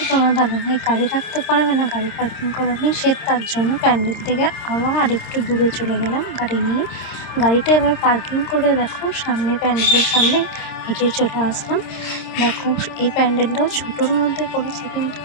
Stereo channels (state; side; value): late; right; 26 ms